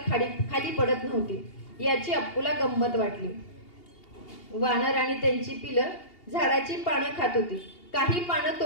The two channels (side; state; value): right; late; 2.8 ms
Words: खाली पडत नव्हती. याची अप्पूला गंमत वाटली. वानर आणि त्यांची पिलं झाडाची पानं खात होती. काही पानं